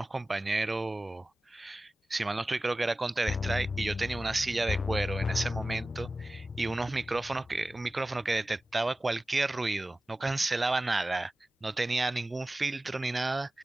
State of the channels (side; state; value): both; normal; correlation 0.96